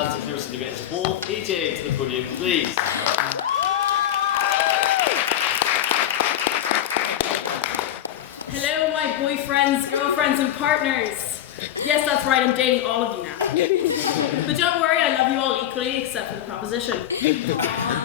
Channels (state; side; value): quieter; right; 11.4 dB